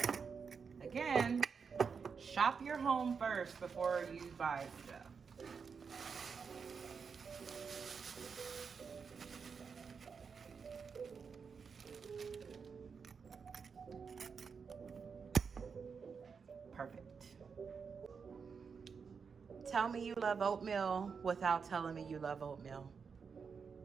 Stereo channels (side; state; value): left; quieter; 5.8 dB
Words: Again, shop your home first before you buy stuff. Perfect. Tell me you love oatmeal without telling me you love oatmeal.